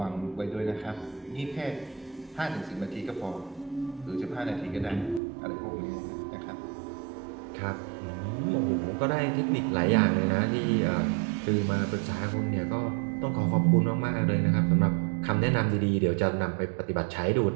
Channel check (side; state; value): left; drops out; at 5.2 s